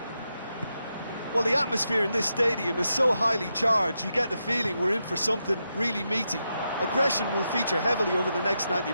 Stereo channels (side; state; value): both; inverted; correlation -0.85